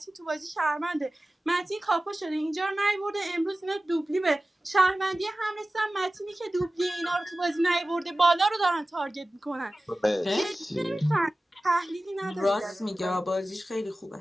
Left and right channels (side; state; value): both; normal; correlation 0.96